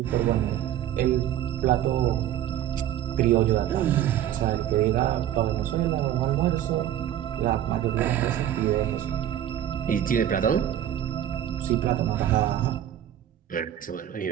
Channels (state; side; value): quieter; left; 11.2 dB